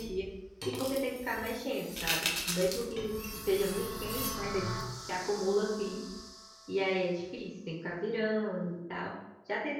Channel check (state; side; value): identical; both; correlation 1.00